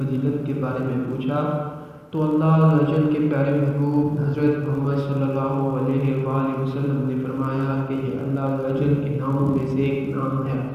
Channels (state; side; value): identical; both; correlation 1.00